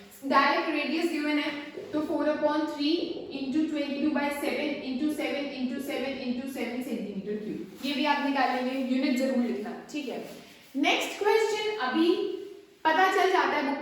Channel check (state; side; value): identical; both; correlation 1.00